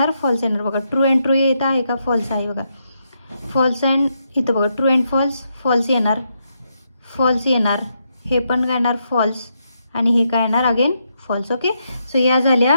फॉल्स येणार बघा. ट्रू अँड ट्रू येत आहे का, फॉल्स आहे बघा. फॉल्स अँड इथं बघा ट्रू अँड फॉल्स, फॉल्स येणार. फॉल्स येणार. हे पण काय येणार फॉल्स आणि हे काय येणार अगेन फॉल्स. ओके. सो या झाल्या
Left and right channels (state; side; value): inverted; both; correlation -0.80